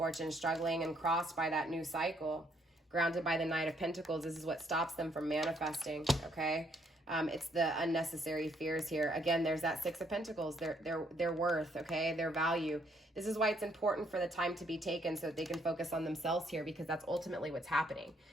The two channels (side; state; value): both; normal; correlation 0.69